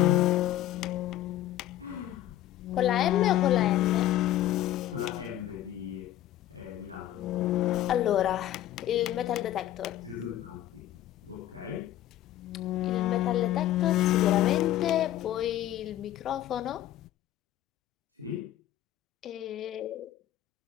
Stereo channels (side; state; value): right; quieter; 13.2 dB